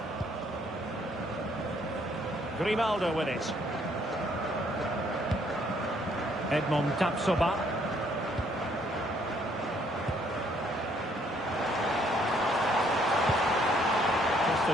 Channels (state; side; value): normal; both; correlation 0.66